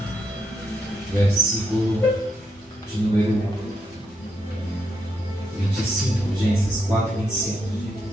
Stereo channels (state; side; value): normal; both; correlation 0.79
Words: versículo de número 25, Gênesis 4, 25.